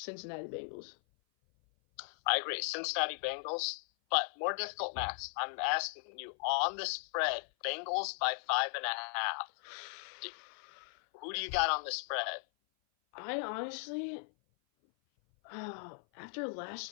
Bengals. I agree. Cincinnati Bengals. But more difficult, Max. I'm asking you, on the spread, Bengals by 5.5. Who do you got on the spread? I honestly, after last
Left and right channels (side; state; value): right; silent; 53 dB below the other